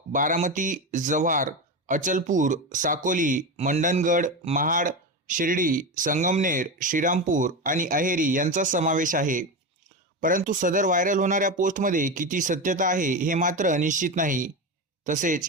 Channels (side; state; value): both; normal; correlation 0.18